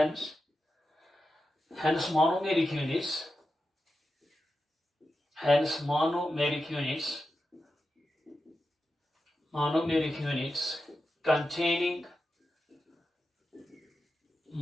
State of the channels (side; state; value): both; normal; correlation 0.90